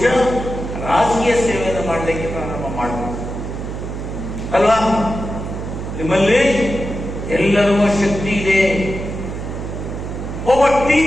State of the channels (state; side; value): noise; right; hum, 6 dB below the sound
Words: ರಾಜಕೀಯ ಸೇವೆಯನ್ನು ಮಾಡಲಿಕ್ಕೆ ಪ್ರಾರಂಭ ಮಾಡಬಹುದು ಅಲ್ವಾ? ನಿಮ್ಮಲ್ಲಿ ಎಲ್ಲರಿಗೂ ಶಕ್ತಿ ಇದೆ. ಒಬ್ಬ